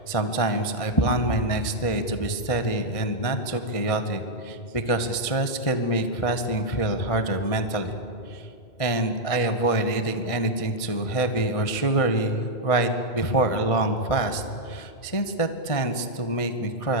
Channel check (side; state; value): right; late; 1.6 ms